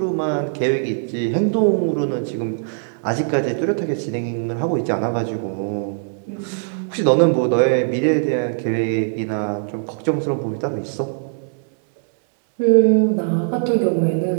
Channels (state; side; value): silent; left; 65 dB below the other